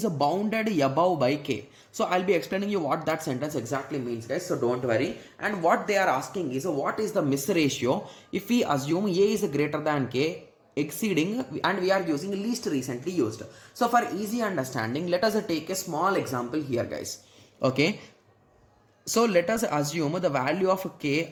bounded above by k. So I'll be explaining you what that sentence exactly means, guys, so don't worry. And what they are asking is what is the miss ratio if we assume a is greater than k exceeding, and we are using least recently used. So for easy understanding, let us take a small example here, guys. Okay, so let us assume the value of k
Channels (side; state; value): both; identical; correlation 1.00